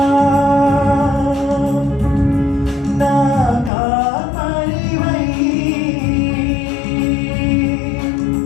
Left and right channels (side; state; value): right; drops out; at 3.7 s